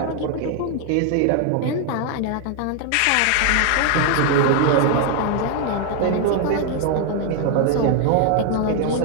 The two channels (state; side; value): different; both; correlation 0.00